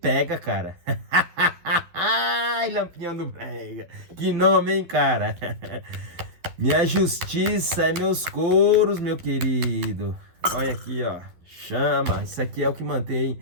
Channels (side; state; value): left; late; 12 ms